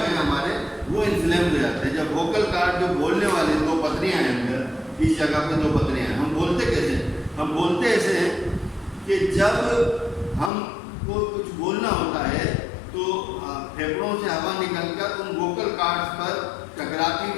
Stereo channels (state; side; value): drops out; right; at 10.5 s